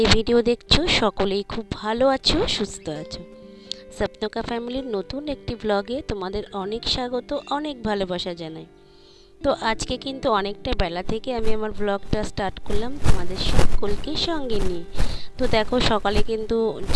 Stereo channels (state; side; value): identical; both; correlation 1.00